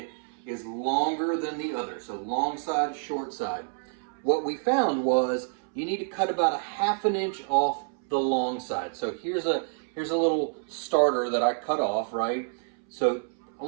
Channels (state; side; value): silent; left; 59 dB below the other